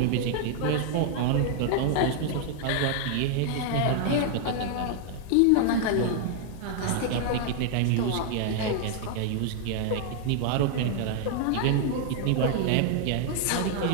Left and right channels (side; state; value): both; different; correlation 0.00